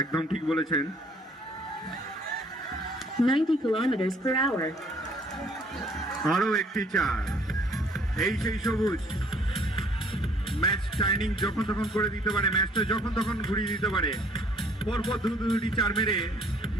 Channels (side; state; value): both; normal; correlation 0.59